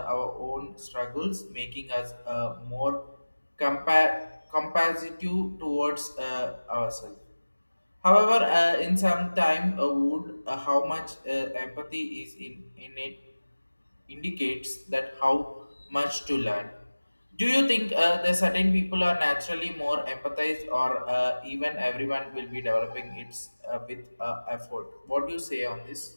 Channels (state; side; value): inverted; both; correlation -1.00